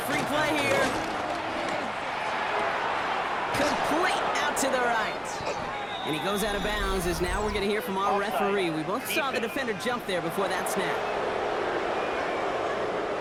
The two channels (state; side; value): identical; both; correlation 1.00